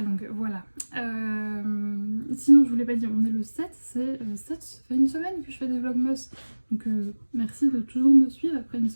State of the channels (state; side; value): inverted; both; correlation -1.00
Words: longue, voilà. Sinon, je vous l'ai pas dit, on est le 7, ça fait une semaine que je fais des vlogmas, donc merci de toujours me suivre après une